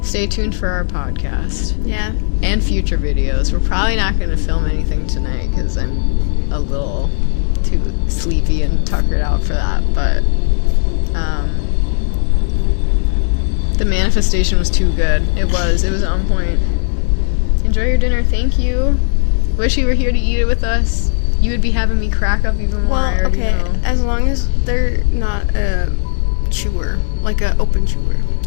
Stay tuned for our podcast Yeah. and future videos. We're probably not going to film anything tonight because I'm a little too sleepy and tuckered out for that. But the manifestation was too good. It was on point. Enjoy your dinner. Thank you. Wish you were here to eat it with us. You would be having me crack up even more. Well, I already okay, know. as long as they're not a chewer, like a open chewer.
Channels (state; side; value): silent; right; digital silence